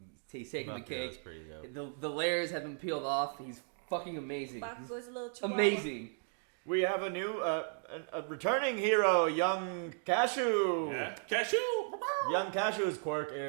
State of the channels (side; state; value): left; silent; 54 dB below the other